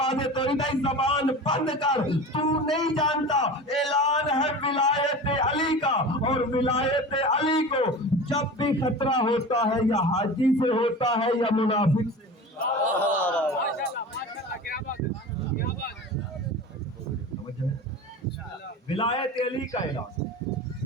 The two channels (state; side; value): normal; both; correlation 0.33